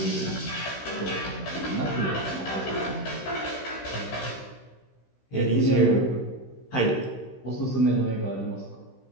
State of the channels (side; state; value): right; late; 16 ms